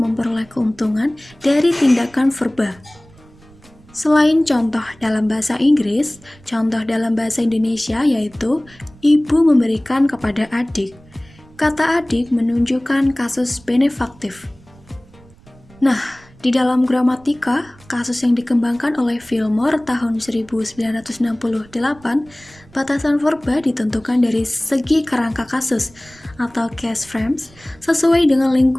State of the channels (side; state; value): right; noise; rumble, 26 dB below the sound